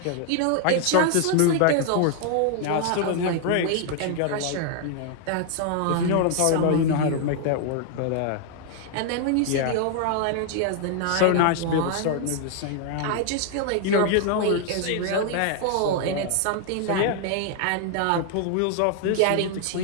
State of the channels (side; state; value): both; different; correlation 0.00